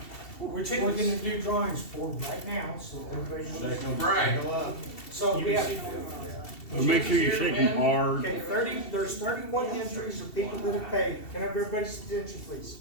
We're tickets. gonna do drawings for them right now, so everybody knows. Right. So You we have, received Make sure you shake them hard. okay, there's 31 entries of people that have paid. Can I have everybody's attention, please?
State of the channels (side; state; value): right; late; 2.7 ms